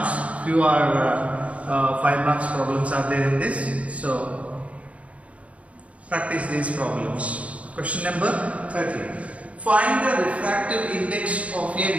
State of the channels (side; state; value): left; late; 0.065 ms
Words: Few are 5 marks problems are there in this. So practice these problems. Question number 13. Find the refractive index of a